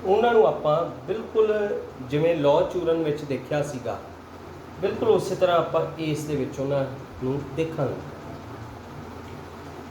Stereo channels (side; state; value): both; identical; correlation 1.00